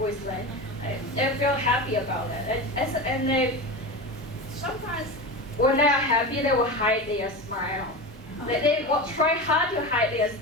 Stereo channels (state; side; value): normal; both; correlation 0.25